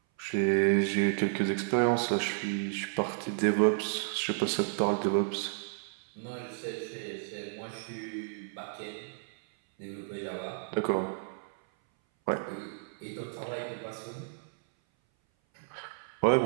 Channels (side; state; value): left; silent; 56 dB below the other